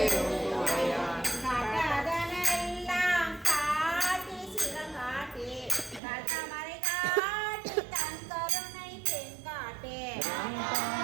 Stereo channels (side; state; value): left; drops out; at 6.0 s